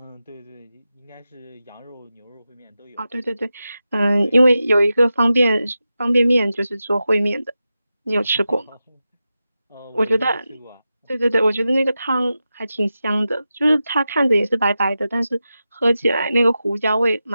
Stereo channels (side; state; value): both; inverted; correlation -0.91